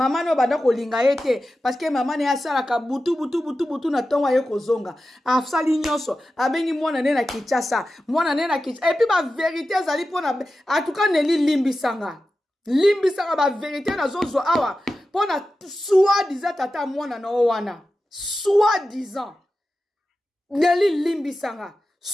no banda kolinga ye te parce que mama na ye asalaka butu na ntongo aye kozonga asali nyonso abengi mwana ne na Kinshasa mwana ne na Kinshasa epuis ba vérité ezali mpona en tout cas Nelly limbisanga limbisanga ba vérité na zozo awa pona soi-disant tata mwana na wana soi-disant Nelly limbisanga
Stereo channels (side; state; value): both; normal; correlation 0.93